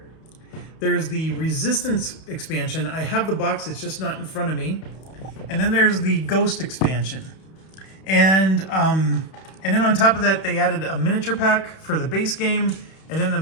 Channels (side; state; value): right; late; 31 ms